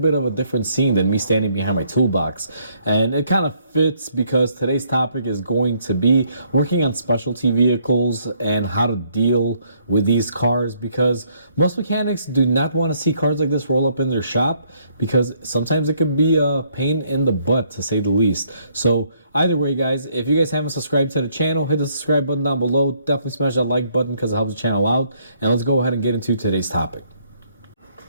of a different scene than me standing behind my toolbox, and it kind of fits because today's topic is going to be working on specialty vehicles and how to deal with these cars, because most mechanics do not want to see cars like this roll up in their shop, because sometimes it could be a pain in the butt, to say the least. So either way, guys, if you guys haven't subscribed to the channel, hit the subscribe button down below. Definitely smash that like button because it helps the channel out. And let's go ahead and get into today's topic.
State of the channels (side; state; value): both; inverted; correlation -0.68